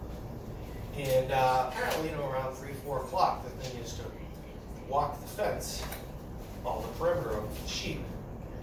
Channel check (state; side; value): identical; both; correlation 1.00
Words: And apparently, around 3, 4 o'clock, the thing is to walk the fence, all the perimeter of the sheep,